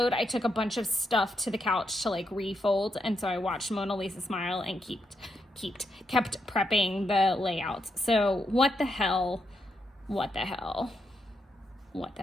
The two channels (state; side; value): normal; both; correlation 0.81